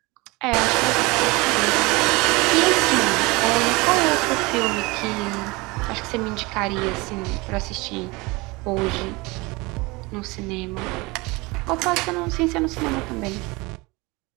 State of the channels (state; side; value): quieter; left; 24.2 dB